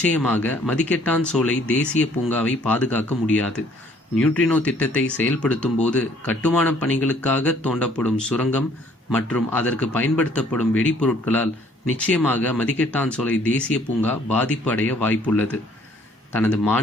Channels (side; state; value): both; normal; correlation 0.60